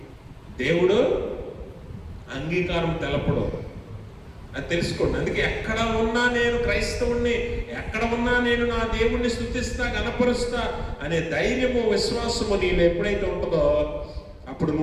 దేవుడు అంగీకారం తెలపడు. అది తెలుసుకోండి. అందుకే ఎక్కడ ఉన్నా నేను క్రైస్తవుణ్ణి, ఎక్కడ ఉన్నా నేను నా దేవుణ్ణి స్తుతిస్తా, గణపరుస్తా అనే ధైర్యము, విశ్వాసము నీలో ఎప్పుడైతే ఉంటుందో అప్పుడు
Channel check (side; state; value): both; identical; correlation 1.00